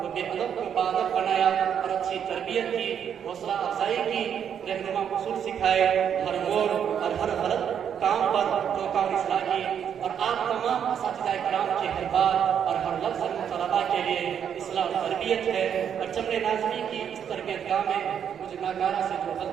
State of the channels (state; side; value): quieter; left; 8.4 dB